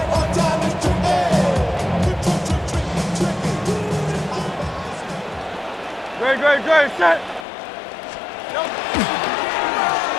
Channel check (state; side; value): drops out; right; at 7.5 s